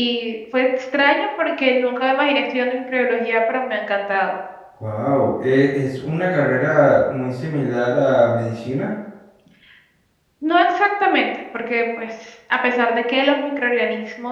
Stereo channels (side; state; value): both; identical; correlation 1.00